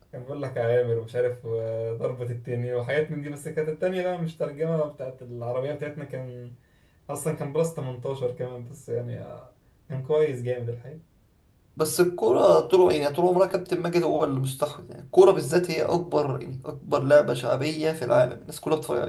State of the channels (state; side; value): identical; both; correlation 1.00